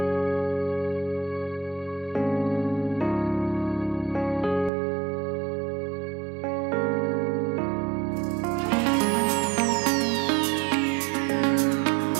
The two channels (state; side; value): drops out; left; at 4.7 s